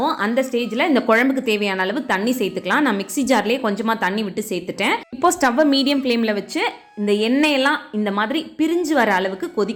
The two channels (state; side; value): identical; both; correlation 1.00